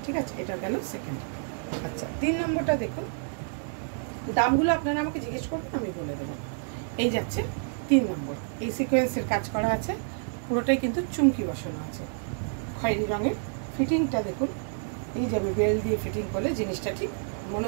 ঠিক আছে? এটা গেল সেকেন্ড। আচ্ছা, 3 নম্বরটা দেখুন। দামগুলো আপনারা আমাকে জিজ্ঞেস করবেন, আমি বলে দেবো। এই যাচ্ছে 3 নম্বর। এই সিকোয়েন্সের কাজ করা আছে, পুরোটাই কিন্তু চুমকি বসানো আছে খয়েরি রঙের। ফিটিংটা দেখুন, এই যাবে বেল্ট দিয়ে ফিটিং করলে জিনিসটা ঠিক মনে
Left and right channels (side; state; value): left; silent; digital silence